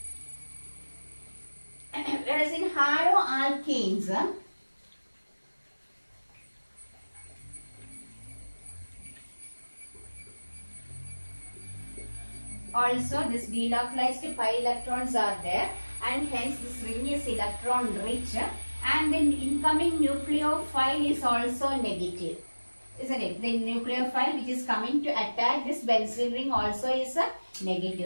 Whereas in haloalkanes, also this delocalized pi electrons are there, and hence this ring is electron rich, and the incoming nucleophile is also negative, isn't it? The nucleophile which is coming to attack this benzene ring also is a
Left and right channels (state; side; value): inverted; both; correlation -1.00